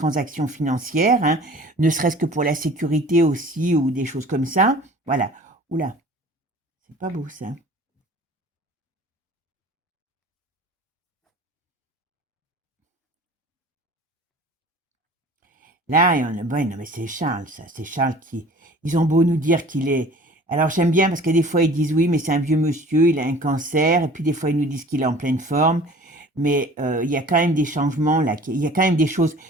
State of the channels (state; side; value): normal; both; correlation 0.46